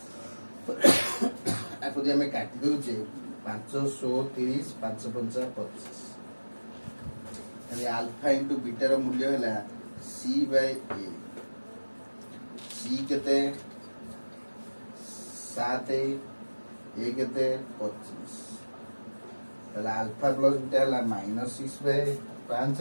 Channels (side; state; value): both; inverted; correlation -1.00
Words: आको जे हमें काटी दोचे 530 5 5 25 ताले अल्फा इनटू बीटा रो मूल्य हला सी बाय ए सी केते 7 ये केते 25 ताले अल्फा प्लस बीटा हला